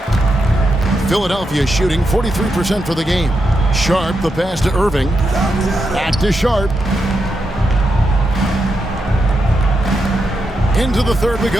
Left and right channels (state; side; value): normal; both; correlation 0.84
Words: Philadelphia shooting 43% for the game. Sharp, the pass to Irving. Back to Sharp. Into the third we